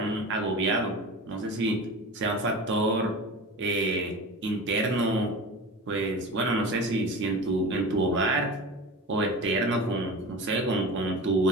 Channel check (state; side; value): normal; both; correlation 0.32